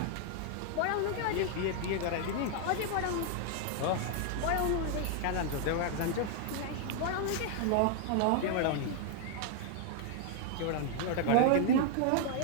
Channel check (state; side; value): different; both; correlation 0.00